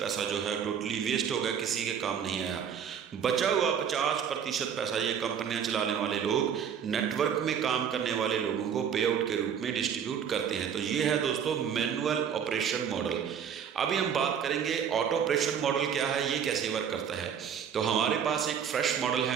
जो है टोटली वेस्ट हो गया, किसी के काम नहीं आया। बचा हुआ 50% पैसा ये कंपनियां चलाने वाले लोग नेटवर्क में काम करने वाले लोगों को पे आउट के रूप में डिस्ट्रीब्यूट करते हैं। तो ये है दोस्तों मैनुअल ऑपरेशन मॉडल। अभी हम बात करेंगे ऑटो ऑपरेशन मॉडल क्या है, ये कैसे वर्क करता है। तो हमारे पास एक फ्रेश मॉडल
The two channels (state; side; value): quieter; left; 7.9 dB